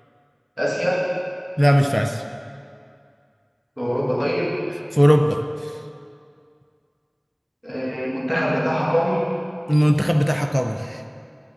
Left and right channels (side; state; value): both; identical; correlation 1.00